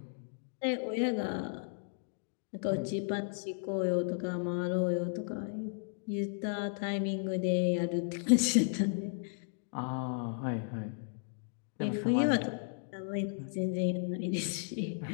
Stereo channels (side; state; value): right; silent; digital silence